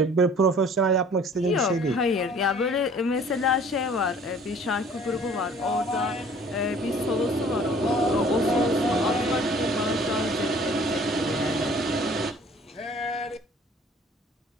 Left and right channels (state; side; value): normal; both; correlation 0.52